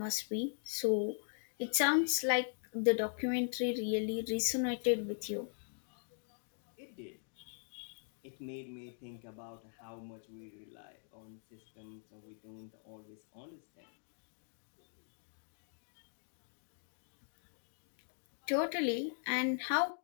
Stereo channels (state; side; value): silent; right; digital silence